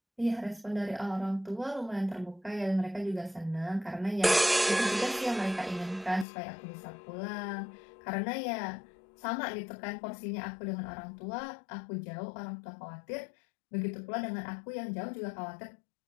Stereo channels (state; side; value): drops out; right; at 6.2 s